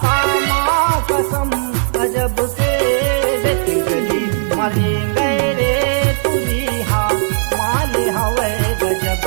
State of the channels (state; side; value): silent; left; digital silence